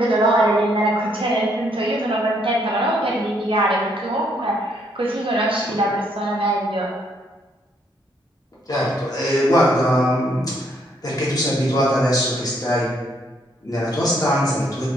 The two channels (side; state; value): both; normal; correlation 0.70